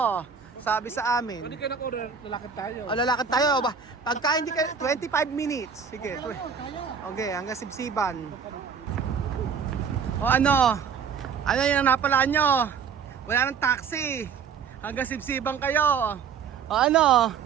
Sabi sa amin. Hindi kayo nag-order, lalakad tayo. O, lalakad tayo. Pagka hindi ka, 25 minutes. Sige. Okay, hanggang sibsiban. O ano? Ano yung napalaan nyo? Wala ng taxi. Hanggang sibsiban kayo. O ano?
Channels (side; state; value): left; quieter; 6.5 dB